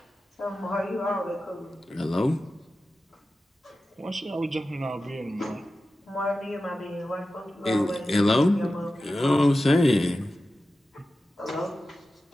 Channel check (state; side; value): normal; both; correlation 0.93